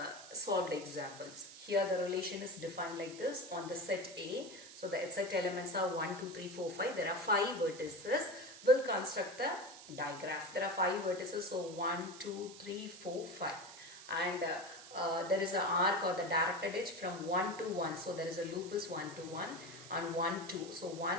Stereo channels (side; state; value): right; noise; hiss, 15 dB below the sound